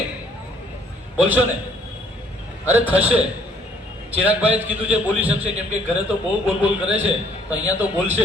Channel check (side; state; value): both; normal; correlation 0.62